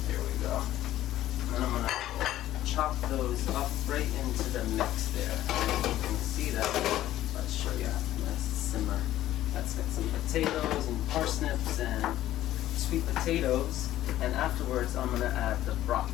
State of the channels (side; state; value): right; quieter; 13.7 dB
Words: There we go. And then I'm gonna chop those up right into the mix there. You can see that. Let's show you. Nice simmer. That's got some potatoes and parsnips and sweet potatoes. And afterwards, I'm gonna add the